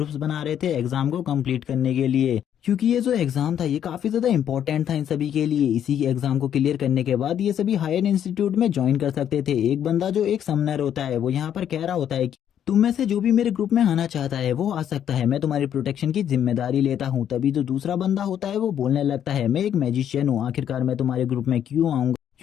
बना रहे थे एग्जाम को कंप्लीट करने के लिए, क्योंकि ये जो एग्जाम था ये काफी ज्यादा इंपॉर्टेंट था इन सभी के लिए। इसी एग्जाम को क्लियर करने के बाद ये सभी हायर इंस्टीट्यूट में ज्वाइन कर सकते थे। एक बंदा जो एक समनर होता है वो यहाँ पर कह रहा होता है कि तुम में से जो भी मेरे ग्रुप में आना चाहता है वो आ सकता है, मैं तुम्हारी प्रोटेक्शन की जिम्मेदारी लेता हूँ। तभी जो दूसरा बंदा होता है वो बोलने लगता है, मैं एक मैजिशियन हूँ, आखिरकार मैं तुम्हारे ग्रुप में क्यों आऊंगा,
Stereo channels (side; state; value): right; quieter; 9.7 dB